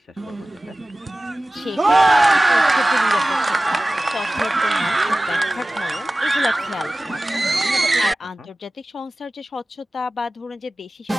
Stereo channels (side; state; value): both; normal; correlation 0.96